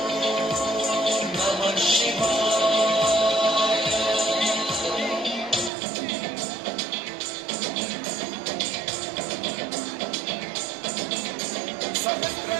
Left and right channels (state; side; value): drops out; left; at 5.7 s